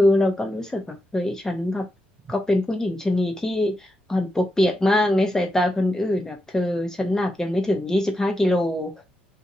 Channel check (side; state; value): both; normal; correlation 0.87